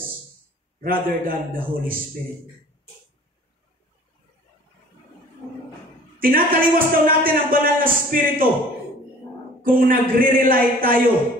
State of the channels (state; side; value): normal; both; correlation 0.49